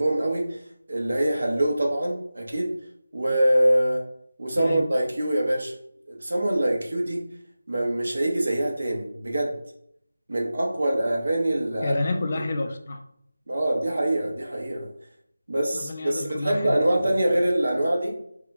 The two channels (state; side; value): inverted; both; correlation -0.95